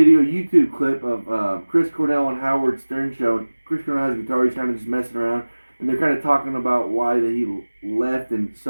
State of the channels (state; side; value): inverted; both; correlation -1.00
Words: YouTube clip of Chris Cornell and Howard Stern show. And Chris Cornell has a guitar, he's kind of just messing around. And they're kind of talking about why that he left and